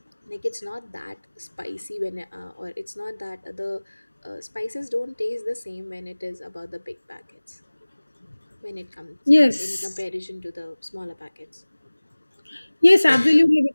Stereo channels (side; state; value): both; inverted; correlation -1.00